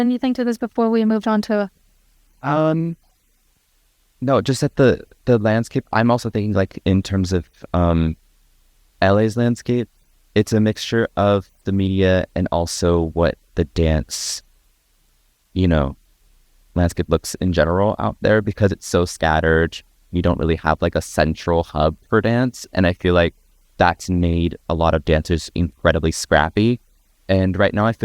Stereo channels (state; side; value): identical; both; correlation 1.00